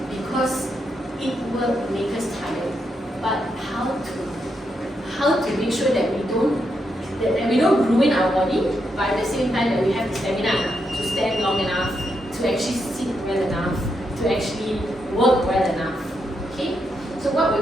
because it will make us tired. But how to make sure that we don't ruin our body, but at the same time that we have the stamina to stand long enough, to actually sit well enough, to actually work well enough. Okay? So what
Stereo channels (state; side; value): normal; both; correlation 0.81